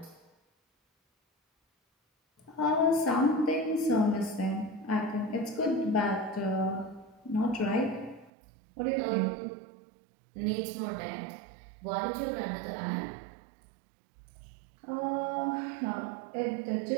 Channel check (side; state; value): left; drops out; at 8.3 s